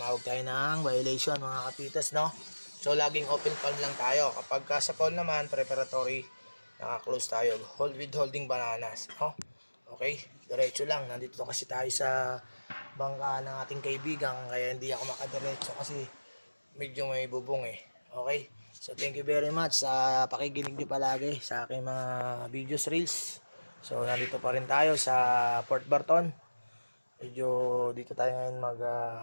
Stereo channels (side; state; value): both; inverted; correlation -1.00